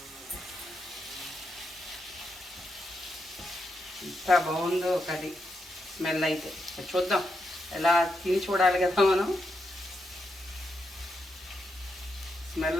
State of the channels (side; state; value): both; normal; correlation 0.83